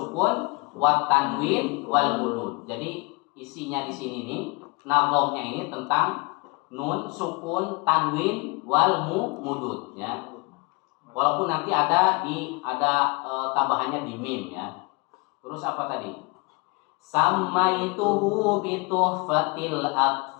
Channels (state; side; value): quieter; right; 29.3 dB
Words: wat tanwin wal mudud. Jadi isinya di sini nih, nazomnya ini tentang nun sukun, tanwin wal mudud ya. Walaupun nanti ada tambahannya di mim ya. Terus apa tadi? Samaituhu bituhfatil